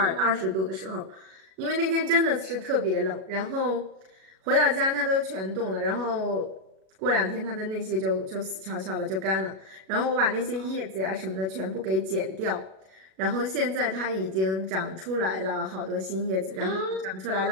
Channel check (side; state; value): left; late; 37 ms